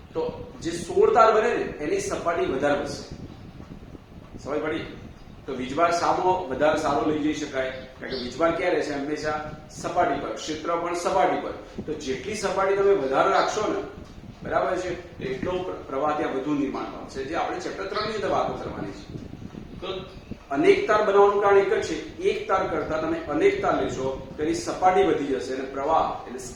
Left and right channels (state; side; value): identical; both; correlation 1.00